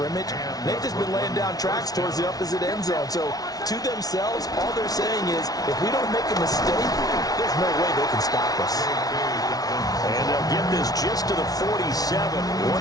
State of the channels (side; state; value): right; late; 0.18 ms